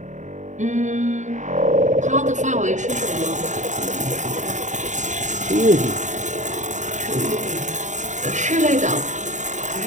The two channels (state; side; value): late; left; 0.35 ms